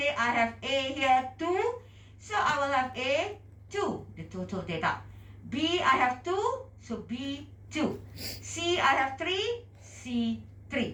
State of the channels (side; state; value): both; identical; correlation 1.00